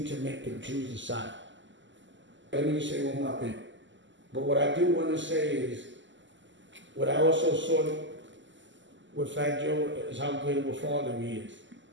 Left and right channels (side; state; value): left; late; 0.54 ms